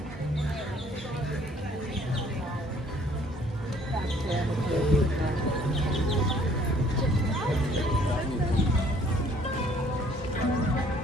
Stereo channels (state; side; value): normal; both; correlation 0.59